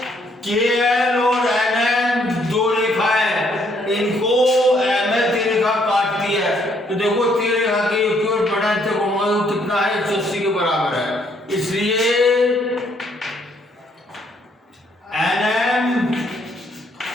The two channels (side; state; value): both; normal; correlation 0.69